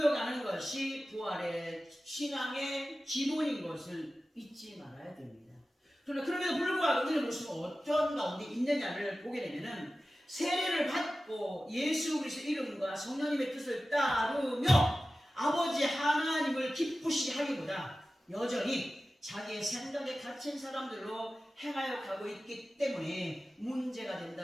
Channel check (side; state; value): both; normal; correlation 0.95